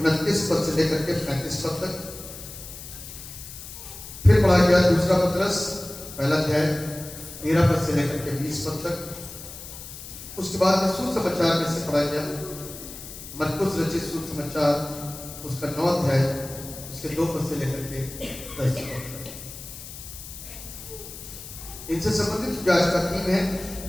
पद से लेकर के 35 पद तक। फिर पढ़ा गया दूसरा पत्रस पहला अध्याय 13 पद से लेकर के 20 पद तक। उसके बाद में सुसमाचार में से पढ़ा गया मरकुस रचित सुसमाचार उसका 9 अध्याय उसके 2 पद से लेकर के 10 पद तक। इनसे संबंधित जो आज का थीम है,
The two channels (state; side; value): noise; left; hiss, 13 dB below the sound